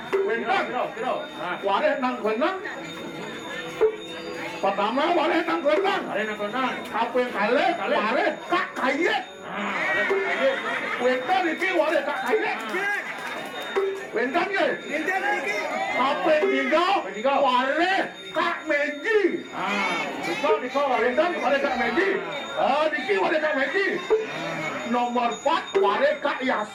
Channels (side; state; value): both; identical; correlation 1.00